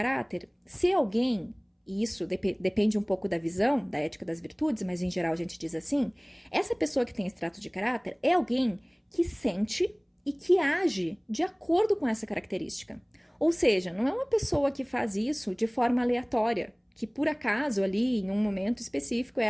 ser alguém. E isso depende um pouco da visão da ética das virtudes, mas em geral a gente diz assim, essa pessoa que tem esse traço de caráter é alguém que sente e que age de acordo com essa característica. Ou seja, não é uma pessoa que faz isso de forma aleatória, que por acaso ali, em um momento específico,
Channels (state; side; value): identical; both; correlation 1.00